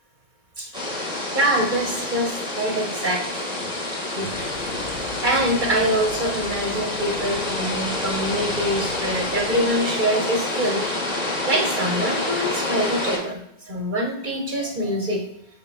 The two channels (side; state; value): left; late; 2.3 ms